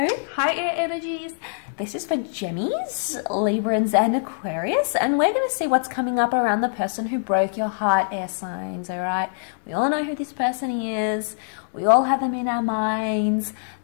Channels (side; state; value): right; silent; digital silence